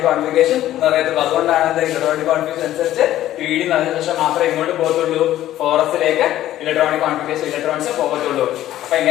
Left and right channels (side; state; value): right; quieter; 13.4 dB